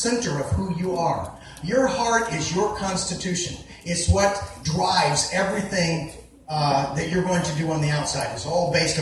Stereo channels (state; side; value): identical; both; correlation 1.00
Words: of who you are. Your heart is your constitution. It's what drives everything that you're going to do on the outside. It's all based